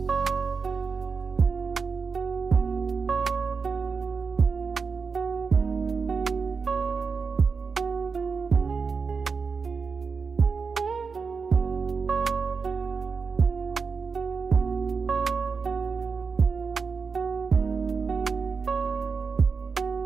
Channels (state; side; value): quieter; left; 5.1 dB